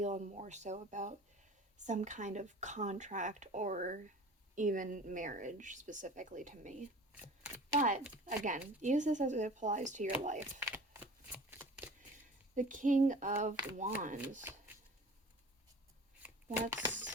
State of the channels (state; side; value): normal; both; correlation 0.42